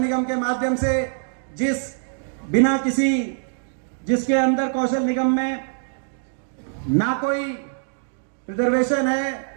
के माध्यम से जिसके अंदर कौशल निगम में ना कोई रिजर्वेशन है,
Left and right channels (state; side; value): silent; left; digital silence